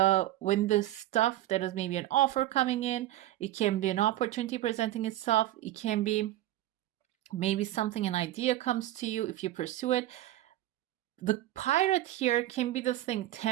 when the stuff that is maybe an offer coming in, it can be an opportunity presenting itself. It can be maybe an idea comes to you if you pursue it. The pirate here can be this thing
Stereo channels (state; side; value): quieter; left; 14.6 dB